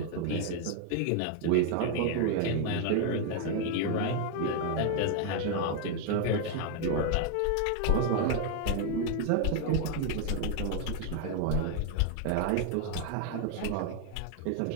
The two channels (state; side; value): different; both; correlation 0.01